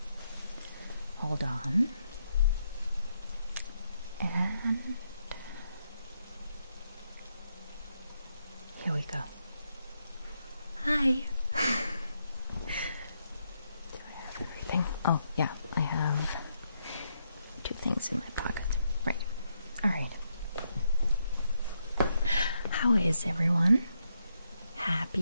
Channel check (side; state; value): both; inverted; correlation -0.79